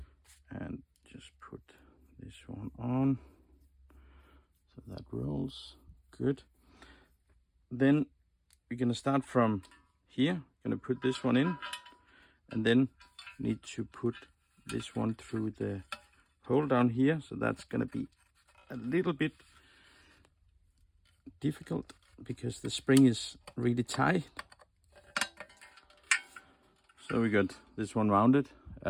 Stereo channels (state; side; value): identical; both; correlation 1.00